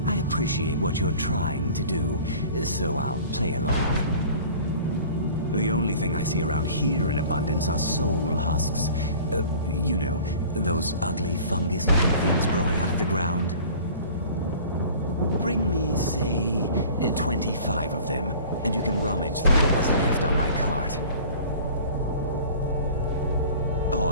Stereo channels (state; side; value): inverted; both; correlation -0.45